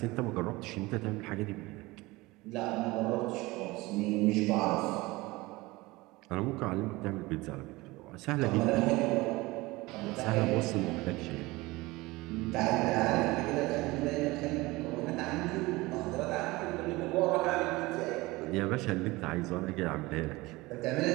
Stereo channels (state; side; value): quieter; left; 21.3 dB